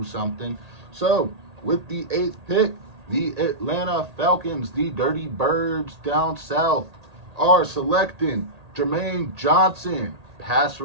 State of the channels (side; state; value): left; late; 1.8 ms